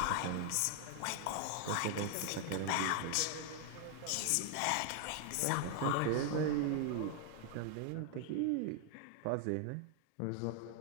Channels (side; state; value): both; different; correlation 0.00